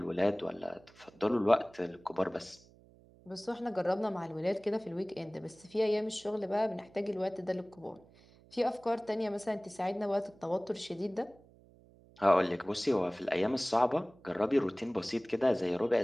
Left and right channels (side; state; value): right; noise; hum, 26 dB below the sound